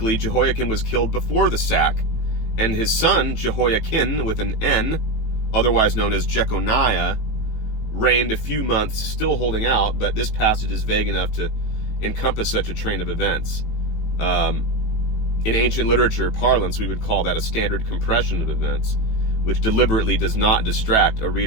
Jehoiakim was killed before the sack, and his son, Jehoiakim, with an N, otherwise known as Jeconiah, reigned a few months, still holding out, but this passage is vague enough to encompass such a train of events. In ancient literature parlance, we would call that a standard compression of events, which deliberately does not distract a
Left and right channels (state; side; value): late; right; 18 ms